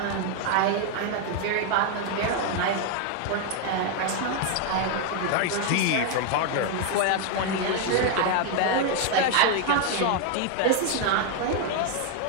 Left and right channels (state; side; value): different; both; correlation 0.00